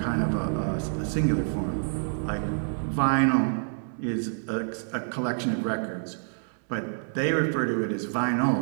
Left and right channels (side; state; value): left; silent; digital silence